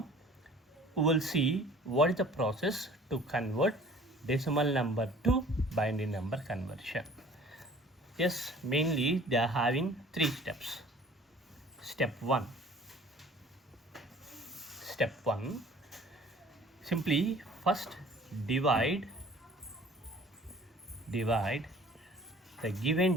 we will see what is the process to convert decimal number to binary number conversion. Yes, mainly they are having 3 steps. Step 1. Step 1. Simply first divide the given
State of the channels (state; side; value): normal; both; correlation 0.50